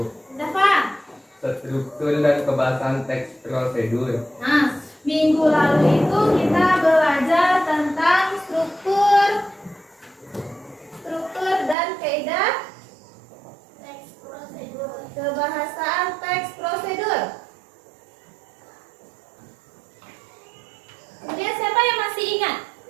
Dafa. struktur dan kebahasan teks prosedur. Nah, minggu lalu itu kita belajar tentang struktur dan kaidah teks prosedur. Kebahasaan teks prosedur. Kemudian siapa yang masih ingat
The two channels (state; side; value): drops out; left; at 11.8 s